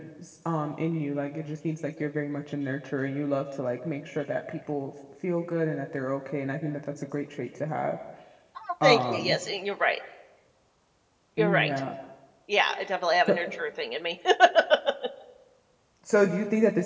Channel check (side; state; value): both; identical; correlation 1.00